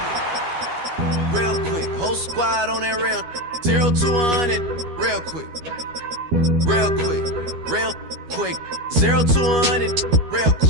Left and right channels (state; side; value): late; left; 12 ms